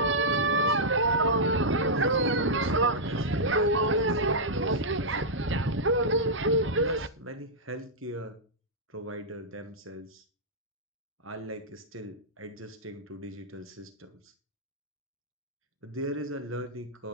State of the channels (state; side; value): normal; both; correlation -0.09